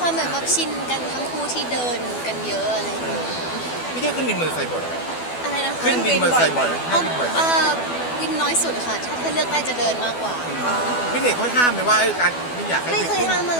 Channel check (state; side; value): late; right; 12 ms